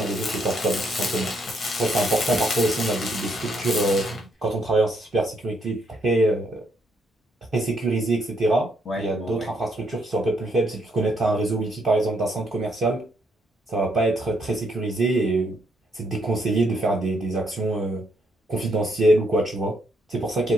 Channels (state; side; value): normal; both; correlation 0.74